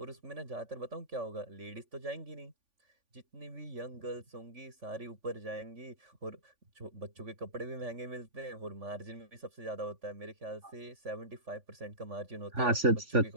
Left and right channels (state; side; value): late; left; 3.5 ms